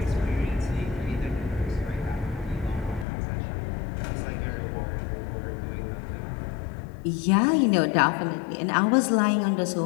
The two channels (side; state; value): right; drops out; at 3.1 s